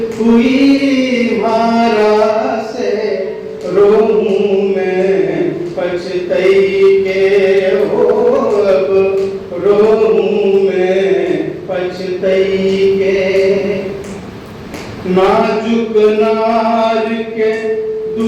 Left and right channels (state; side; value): identical; both; correlation 1.00